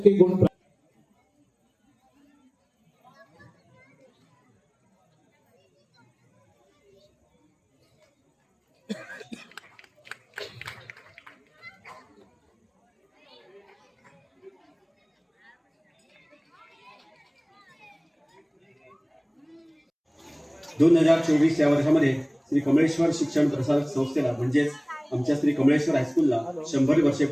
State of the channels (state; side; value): identical; both; correlation 1.00